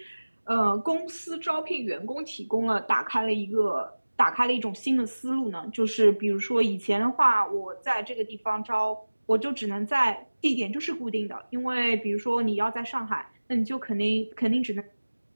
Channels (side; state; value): both; inverted; correlation -1.00